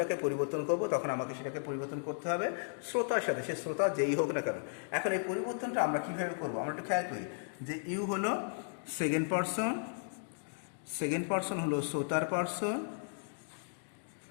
পরিবর্তন করব, তখন আমাকে সেটাকে পরিবর্তন করতে হবে শ্রোতার সাথে, সে শ্রোতা যেই হোক না কেন। এখন এই পরিবর্তনটা আমরা কীভাবে করব? আমরা একটু খেয়াল করি যে ইউ হলো সেকেন্ড পার্সন হলো শ্রোতার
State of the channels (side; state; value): right; silent; digital silence